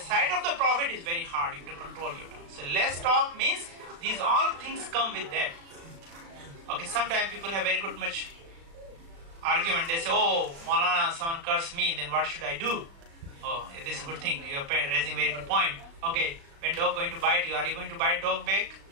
of the Prophet is very hard. You have to control your tongue. So less talk means these all things come with that. Okay, sometimes people have very good much argument. They say, oh, Maulana, someone cursed me, then what should I do? Oh, this is a good thing. You are raising a very good point. Okay, when dog going to bite you, are you going to bite dog back?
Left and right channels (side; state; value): left; late; 36 ms